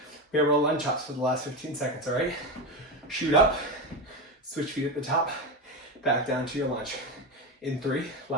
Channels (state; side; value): normal; both; correlation 0.17